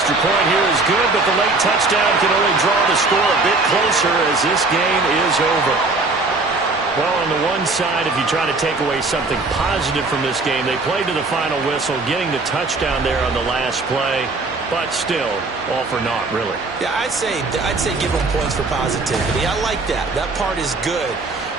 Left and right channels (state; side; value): quieter; left; 3.5 dB